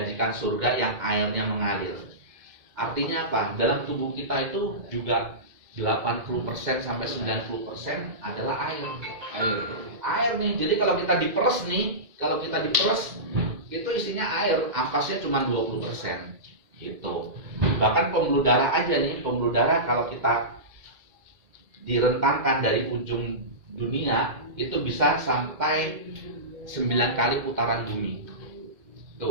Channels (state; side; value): late; left; 2.1 ms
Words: surga yang airnya mengalir. Artinya apa? Dalam tubuh kita itu juga 80% sampai 90% adalah air. Air nih. Jadi kalau kita diperes itu isinya air, ampasnya cuma 20% gitu. Bahkan pembuluh darah aja nih, pembuluh darah kalau kita direntangkan dari ujung dunia itu bisa sampai 9 kali putaran bumi.